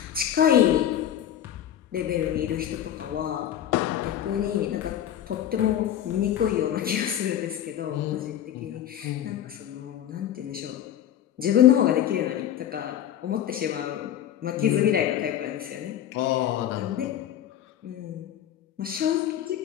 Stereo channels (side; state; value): right; quieter; 10.8 dB